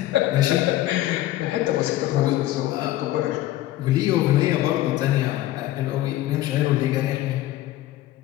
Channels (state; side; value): quieter; right; 15.0 dB